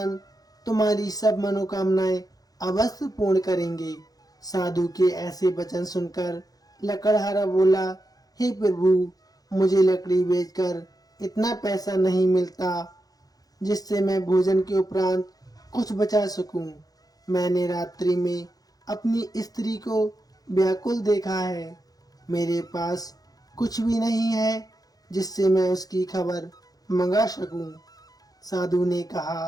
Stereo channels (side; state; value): right; late; 0.18 ms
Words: तुम्हारी सब मनोकामनाएं अवश्य पूर्ण करेंगे। साधु के ऐसे वचन सुनकर लकड़हारा बोला, हे प्रभु, मुझे लकड़ी बेचकर इतना पैसा नहीं मिलता जिससे मैं भोजन के उपरांत कुछ बचा सकूं। मैंने रात्रि में अपनी स्त्री को व्याकुल देखा है। मेरे पास कुछ भी नहीं है जिससे मैं उसकी खबर मंगा सकूं। साधु ने